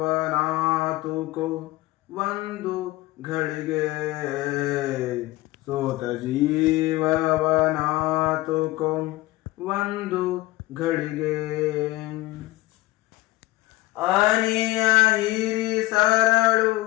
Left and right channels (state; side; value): quieter; right; 19.1 dB